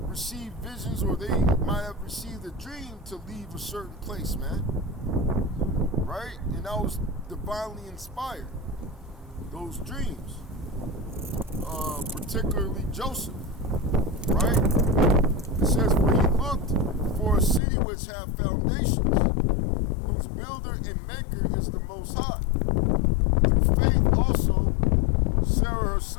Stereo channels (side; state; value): right; drops out; at 17.6 s